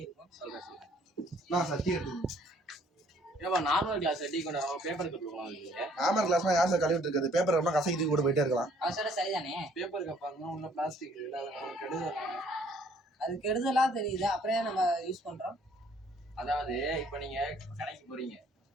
இருக்கும். சொல்றேன் சொல்றேன். நான் சட்டி எடுத்துக்கணும். ஏப்பா நார்மல் கிளாஸ் டீ கொண்டு வரோம், பேப்பர் கப் கொடுக்கலாம். நார்மல் கிளாஸ்லாம் யார் சார் கழுவிட்டு இருக்குது? பேப்பர் கப்லாம் கசக்கி கூட போயிட்டே இருக்கலாம். அவன் சொல்ல சரிதானே. பேப்பர் கப் பாருங்க, உள்ள பிளாஸ்டிக் இல்லை, அது நமக்கு கெடுதல். அது கெடுதலா தெரியுது, அப்புறம் நம்ம யூஸ் பண்றோம். அதாவது இப்போ நீங்க கடைக்கு போறீங்க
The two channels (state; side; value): normal; both; correlation 0.61